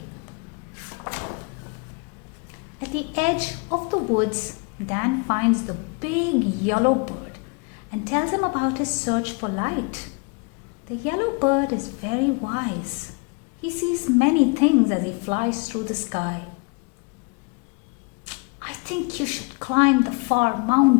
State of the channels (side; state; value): right; quieter; 31.1 dB